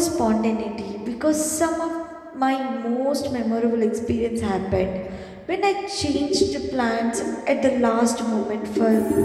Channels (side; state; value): both; identical; correlation 1.00